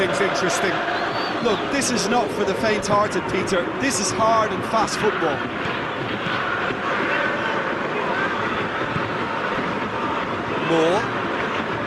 interesting. Look, this is not for the faint-hearted, Peter. This is hard and fast football. Moore.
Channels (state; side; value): identical; both; correlation 1.00